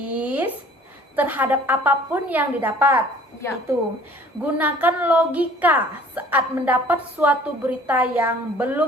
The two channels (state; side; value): normal; both; correlation 0.52